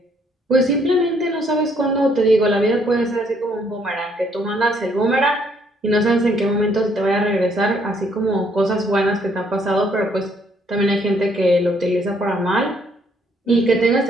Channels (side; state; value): both; normal; correlation 0.67